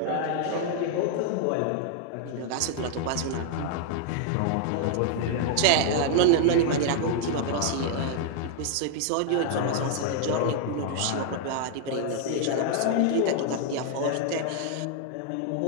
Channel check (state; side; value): different; both; correlation 0.00